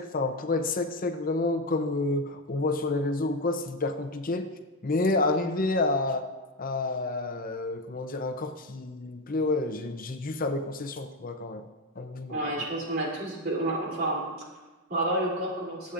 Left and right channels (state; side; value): normal; both; correlation 0.12